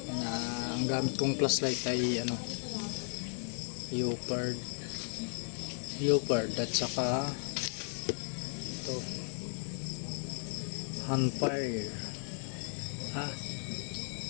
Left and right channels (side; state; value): right; silent; 54 dB below the other